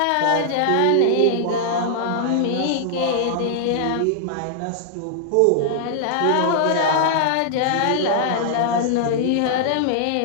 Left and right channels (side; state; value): both; different; correlation -0.01